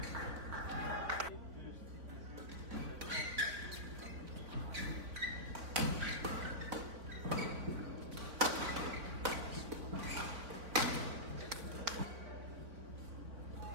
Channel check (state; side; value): late; left; 4.0 ms